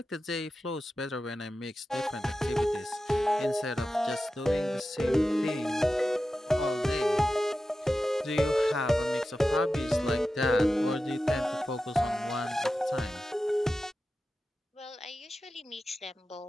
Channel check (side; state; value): both; normal; correlation 0.93